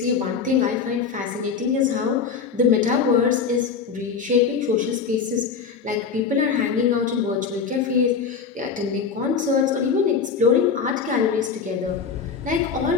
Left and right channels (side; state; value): right; quieter; 5.9 dB